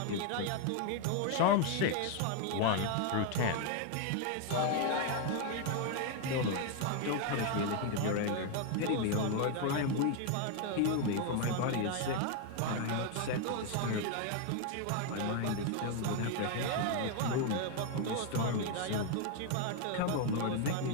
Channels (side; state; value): both; different; correlation 0.01